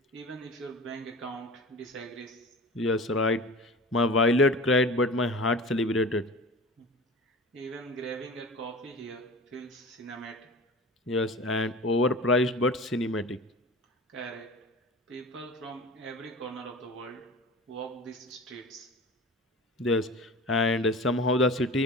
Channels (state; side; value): normal; both; correlation 0.36